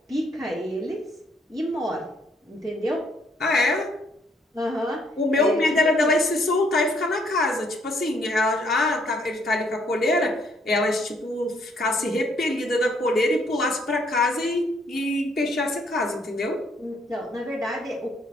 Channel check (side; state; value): both; normal; correlation 0.67